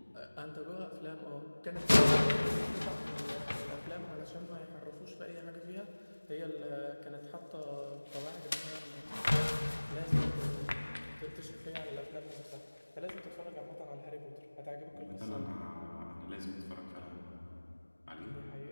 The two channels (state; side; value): inverted; both; correlation -1.00